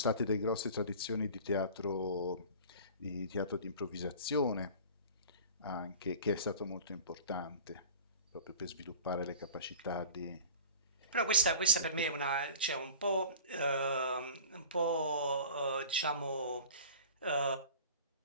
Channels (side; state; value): both; inverted; correlation -0.42